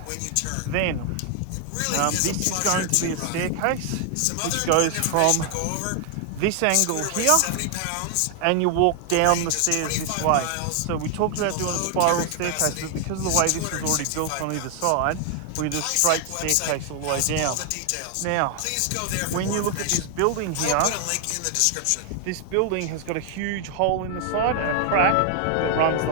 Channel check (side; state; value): both; different; correlation 0.00